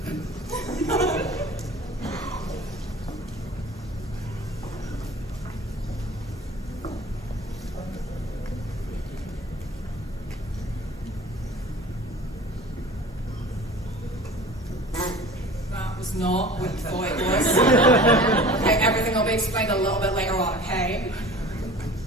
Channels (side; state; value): both; normal; correlation 0.42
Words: That was not what you thought it was. Okay, everything will be explained a little bit later on, okay?